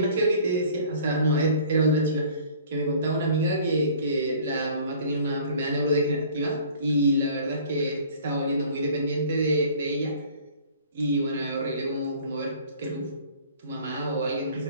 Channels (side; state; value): both; inverted; correlation -0.50